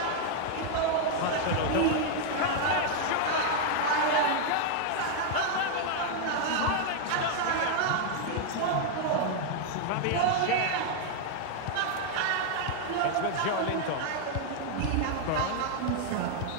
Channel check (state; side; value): different; both; correlation 0.00